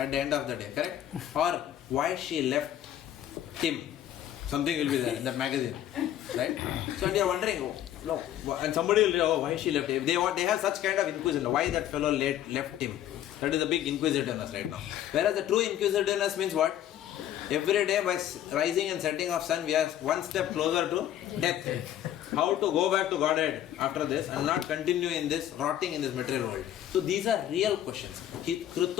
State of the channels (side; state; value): right; quieter; 11.5 dB